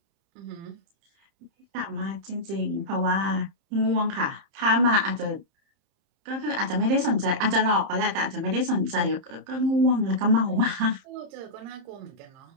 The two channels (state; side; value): late; left; 30 ms